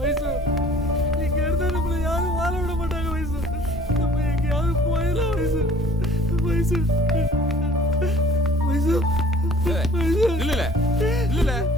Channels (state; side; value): normal; both; correlation 0.53